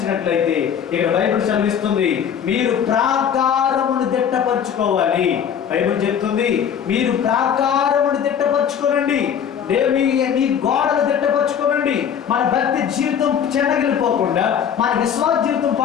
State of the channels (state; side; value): quieter; right; 8.2 dB